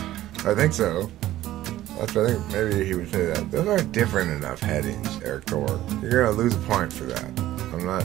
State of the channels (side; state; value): left; quieter; 14.4 dB